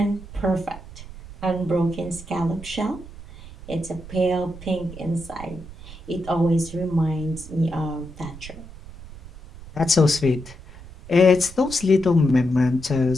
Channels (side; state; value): right; noise; rumble, 15 dB below the sound